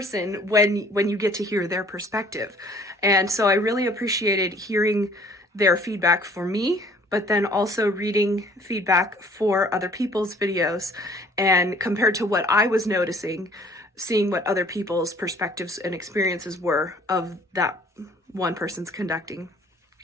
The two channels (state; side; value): normal; both; correlation 0.55